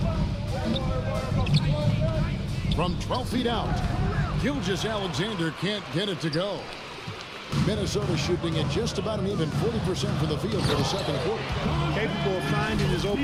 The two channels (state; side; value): identical; both; correlation 1.00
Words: From 12 feet out, Gilgeous-Alexander can't get it to go. Minnesota shooting at just about an even 40% for the field for the second quarter. Capable of finding his